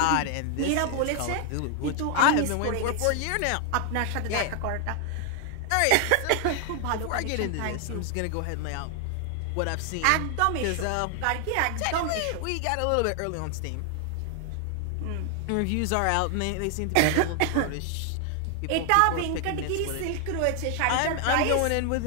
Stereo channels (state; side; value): different; both; correlation 0.00